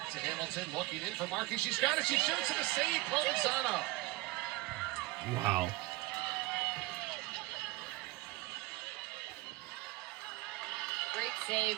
to Hamilton, looking in for Markey. She's got it. She shoots and a save. Provenzano. Wow. Great save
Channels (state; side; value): quieter; left; 20.7 dB